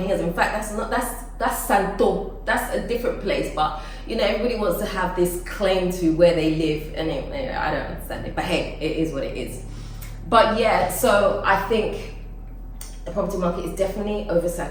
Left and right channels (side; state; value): both; identical; correlation 1.00